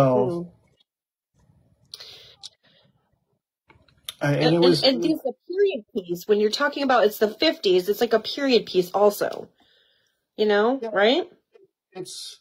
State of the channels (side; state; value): both; identical; correlation 1.00